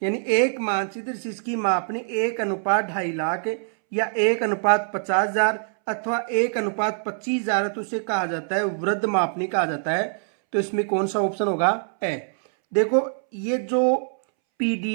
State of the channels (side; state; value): left; silent; 63 dB below the other